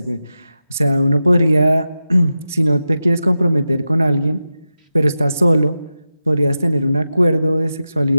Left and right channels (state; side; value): inverted; both; correlation -0.91